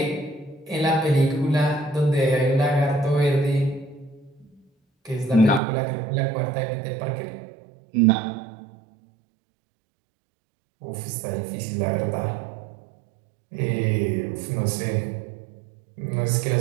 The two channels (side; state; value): left; drops out; at 5.6 s